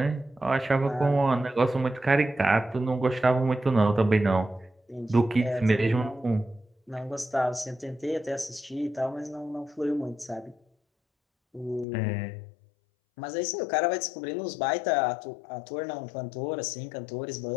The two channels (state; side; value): drops out; right; at 11.9 s